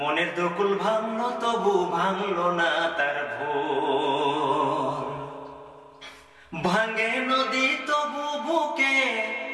দুকুল ভাঙলো তবু ভাঙলো না তার ভুল। ভাঙ্গে নদী তবু বুকে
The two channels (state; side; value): identical; both; correlation 1.00